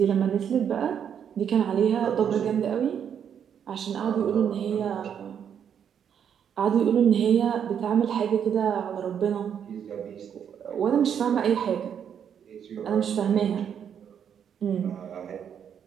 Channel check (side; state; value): left; quieter; 8.3 dB